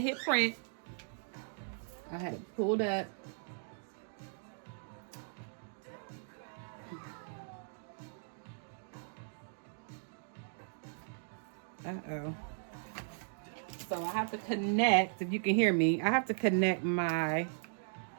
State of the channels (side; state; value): left; silent; digital silence